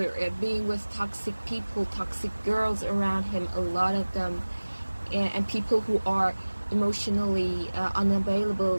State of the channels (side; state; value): both; inverted; correlation -1.00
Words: being with toxic people, toxic girls around him, a lot of them, and people who are emotionally unavailable